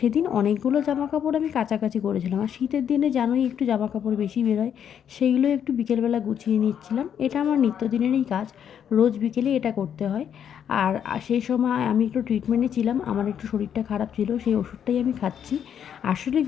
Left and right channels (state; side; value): quieter; right; 8.7 dB